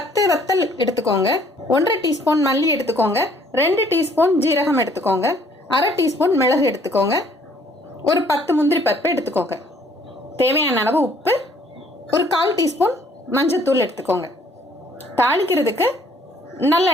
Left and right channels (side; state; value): both; normal; correlation 0.61